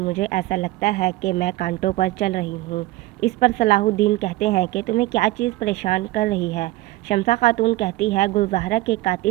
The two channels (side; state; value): left; quieter; 18.2 dB